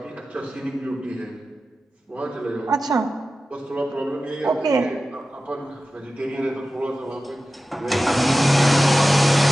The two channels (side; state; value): both; normal; correlation 0.94